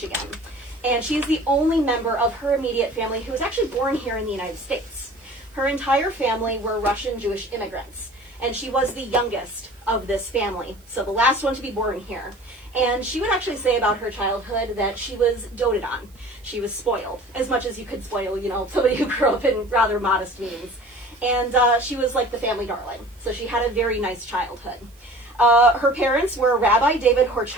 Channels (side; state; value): right; noise; hiss, 30 dB below the sound